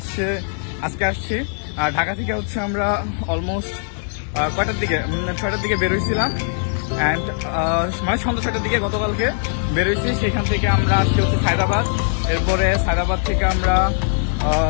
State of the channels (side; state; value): right; silent; 64 dB below the other